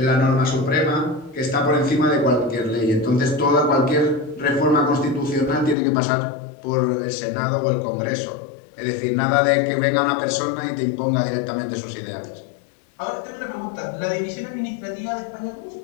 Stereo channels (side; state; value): right; drops out; at 5.8 s